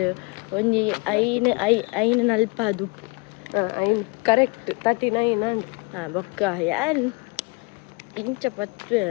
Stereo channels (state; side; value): quieter; right; 30.3 dB